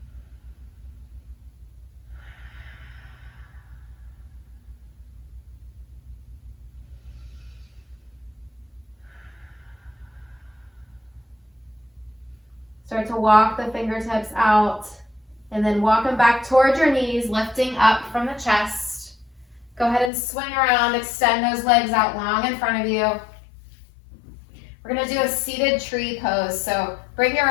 Start to walk the fingertips out and then walk them back towards your knees, lifting up from the chest. Go ahead and swing around, extend those legs out long in front of you. We're gonna do a seated tree pose. So bring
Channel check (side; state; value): right; drops out; at 20.1 s